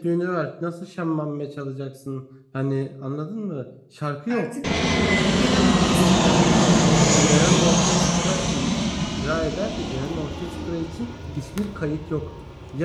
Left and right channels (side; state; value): both; identical; correlation 1.00